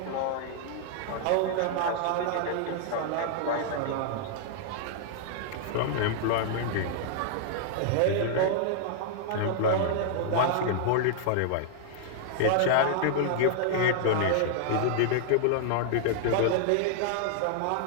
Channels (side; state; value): both; different; correlation -0.01